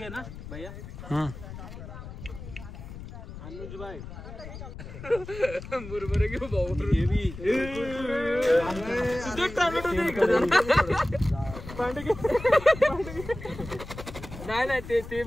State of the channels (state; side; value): noise; left; rumble, 12 dB below the sound